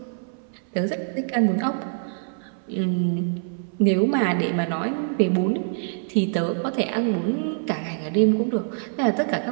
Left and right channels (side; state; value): left; silent; 58 dB below the other